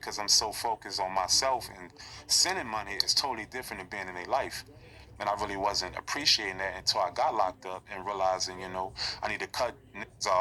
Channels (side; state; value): both; identical; correlation 1.00